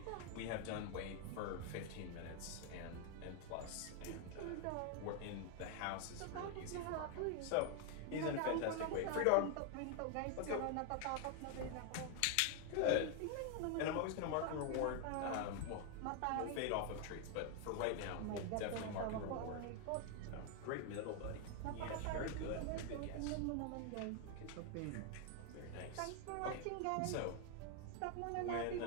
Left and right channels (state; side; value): different; both; correlation 0.00